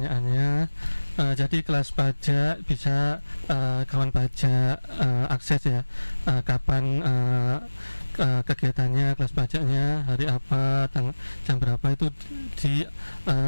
Jadi kelas pajak bisa kawan pajak akses ya. Kapan kegiatannya, kelas pajaknya, hari apa, jam berapa itu di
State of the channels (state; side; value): inverted; both; correlation -1.00